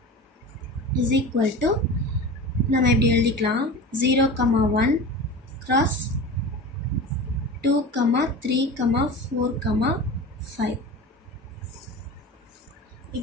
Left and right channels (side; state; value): both; normal; correlation 0.32